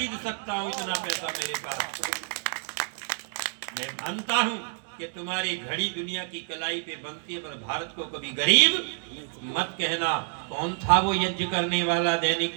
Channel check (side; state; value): left; silent; 59 dB below the other